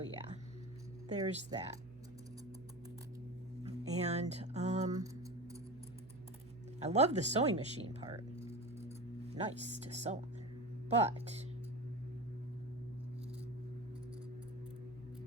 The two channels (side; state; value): right; noise; hum, 22 dB below the sound